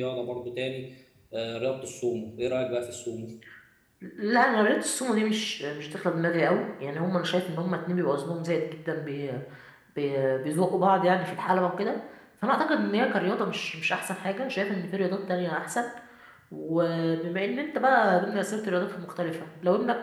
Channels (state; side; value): identical; both; correlation 1.00